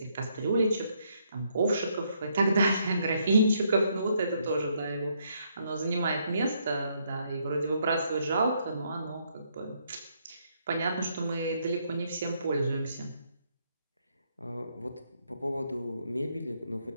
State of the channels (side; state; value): both; inverted; correlation -0.73